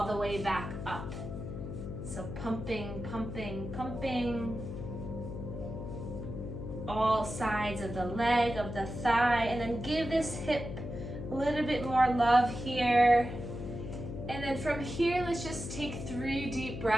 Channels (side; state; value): left; noise; hum, 7 dB below the sound